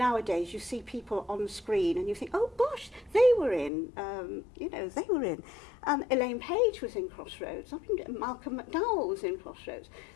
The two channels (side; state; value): right; drops out; at 3.7 s